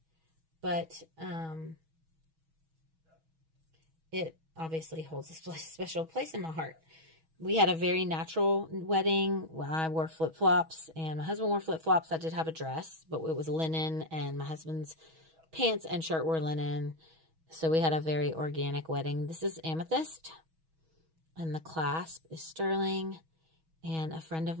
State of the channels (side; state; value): left; late; 6.2 ms